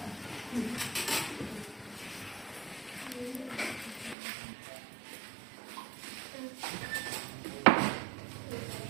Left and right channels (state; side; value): drops out; left; at 4.2 s